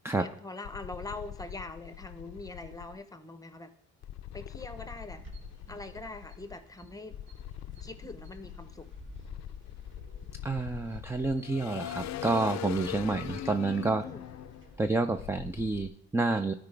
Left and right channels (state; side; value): normal; both; correlation 0.70